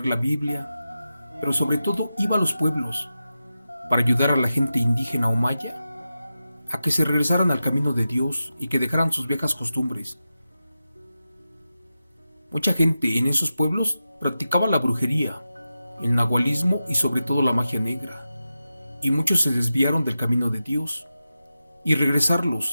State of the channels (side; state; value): both; inverted; correlation -0.91